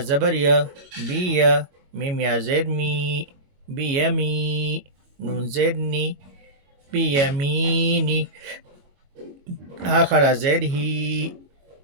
زبر یا، بی یا. میم یا زیر می، بی یمی. نون زیر نی، بی یمینی. ہا کھڑا زیر ہی،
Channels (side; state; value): left; late; 21 ms